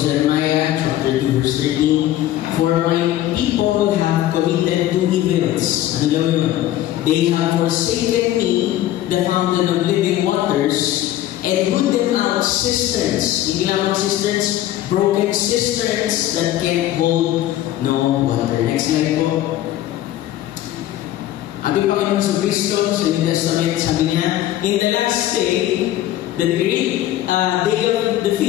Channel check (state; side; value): quieter; right; 13.5 dB